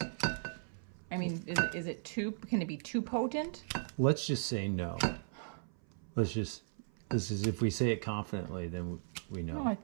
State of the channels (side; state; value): left; silent; 53 dB below the other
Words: I mean, is it too, can it be too potent? Let's just say no. This is, if we say it confidently, then we know. No, I